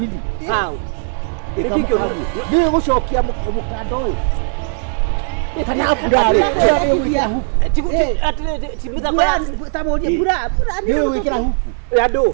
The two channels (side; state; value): left; silent; 60 dB below the other